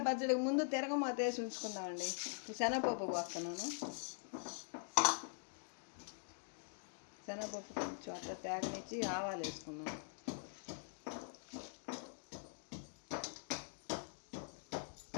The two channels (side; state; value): right; silent; digital silence